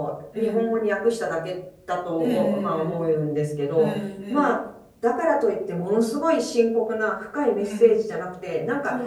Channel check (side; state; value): both; identical; correlation 1.00